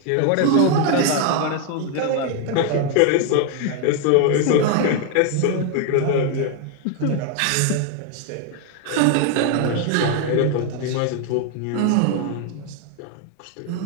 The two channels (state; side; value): different; both; correlation 0.01